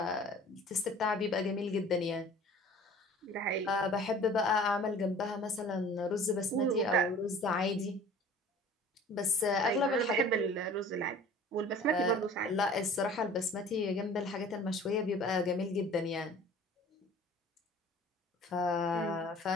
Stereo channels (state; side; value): normal; both; correlation 0.46